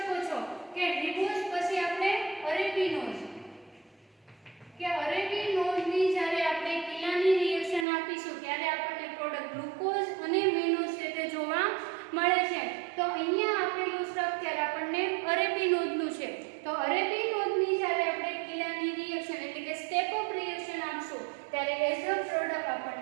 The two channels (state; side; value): drops out; left; at 7.9 s